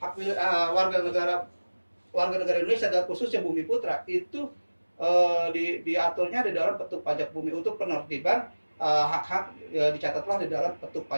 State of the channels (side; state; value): both; inverted; correlation -1.00